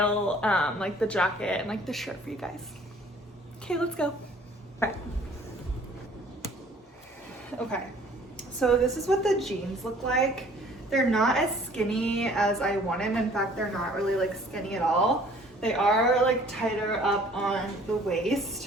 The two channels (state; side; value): normal; both; correlation 0.54